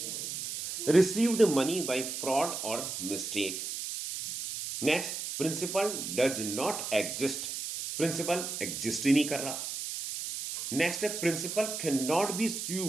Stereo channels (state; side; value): noise; right; hiss, 5 dB below the sound